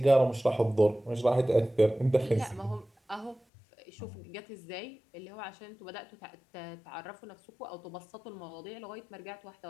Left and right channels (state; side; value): drops out; right; at 3.4 s